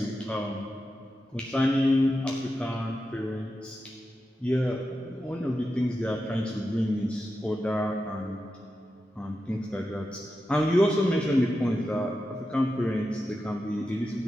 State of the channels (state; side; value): normal; both; correlation 0.90